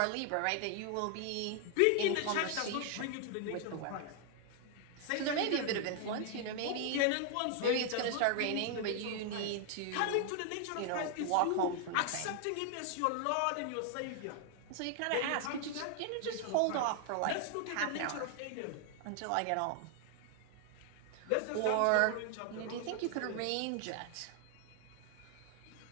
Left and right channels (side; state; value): both; different; correlation 0.00